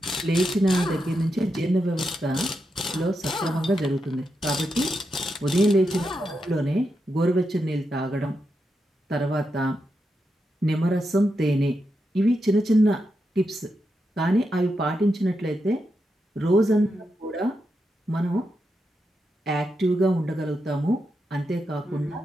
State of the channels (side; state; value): both; normal; correlation 0.86